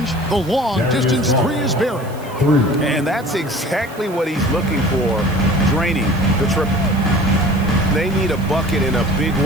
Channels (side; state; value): right; noise; hiss, 22 dB below the sound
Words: the long distance three is buried. And that's exactly what he's looking for, draining the triple. They need a bucket in a big